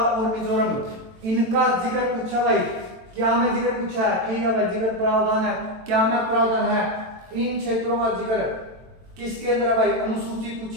मिजोरम। इनका जिक्र पूछा भाई, क्या में जिक्र पूछा है, ठीक है भाई, जिक्र प्रावधान है, क्या में प्रावधान है, इन क्षेत्रों का जिक्र किसके अंदर है भाई, अनुसूची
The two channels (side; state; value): left; late; 22 ms